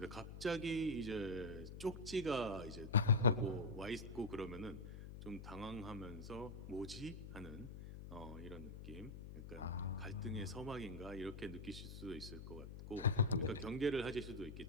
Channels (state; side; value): noise; left; hum, 10 dB below the sound